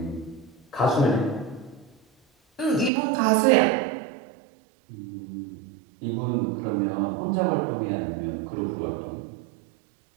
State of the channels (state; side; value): drops out; left; at 2.9 s